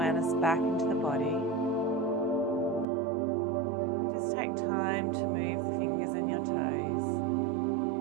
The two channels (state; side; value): drops out; left; at 2.9 s